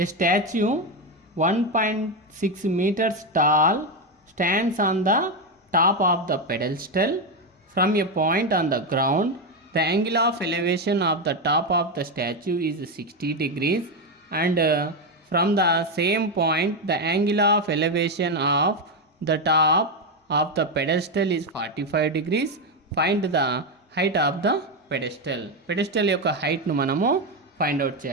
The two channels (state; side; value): normal; both; correlation 0.08